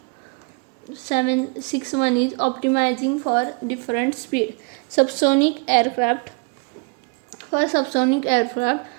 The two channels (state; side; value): quieter; left; 33.4 dB